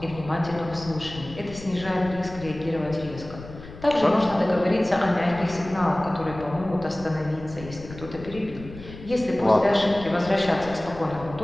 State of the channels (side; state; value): left; noise; rumble, 15 dB below the sound